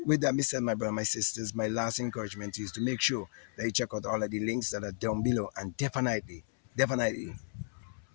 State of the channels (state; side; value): silent; right; 56 dB below the other